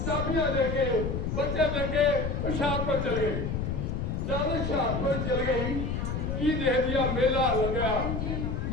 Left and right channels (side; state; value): left; noise; rumble, 2 dB below the sound